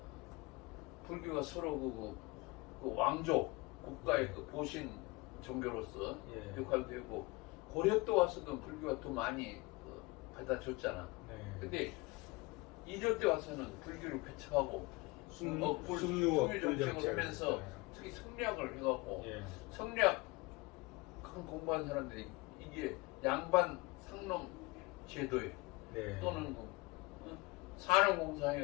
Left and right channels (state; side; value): quieter; right; 24.0 dB